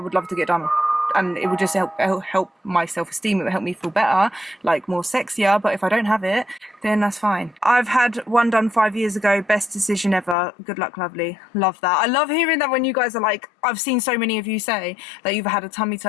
love to get done and it would just help my self-esteem. It would help me feel better, like more sexier. But if I don't have it, then that's fine. I've had one done 5 years ago. Best decision ever. Good luck, lovely. Love that. I love hearing that when you guys are like, I've seen so many of you say that you've had a tummy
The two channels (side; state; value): right; drops out; at 10.4 s